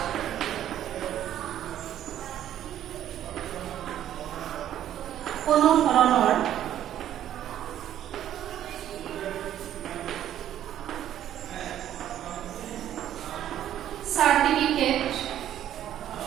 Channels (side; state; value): left; quieter; 11.3 dB